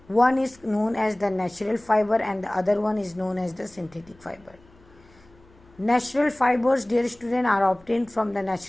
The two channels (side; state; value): left; noise; hum, 28 dB below the sound